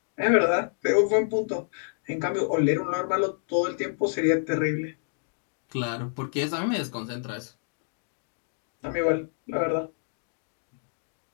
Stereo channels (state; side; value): silent; right; digital silence